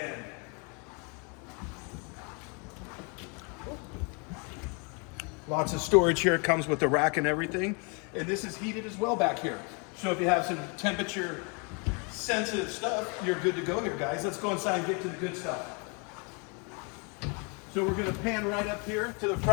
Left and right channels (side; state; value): right; quieter; 33.9 dB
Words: lots of storage here. It comes with the rack and everything. And this is heated as well back here. So if you have some temperature sensitive stuff, you're good to go here, guys. Let's go inside and get to the good stuff. So we're going to pan right up here to the